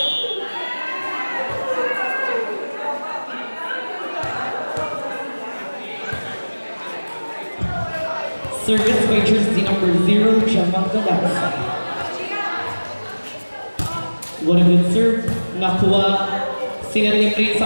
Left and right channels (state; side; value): inverted; both; correlation -1.00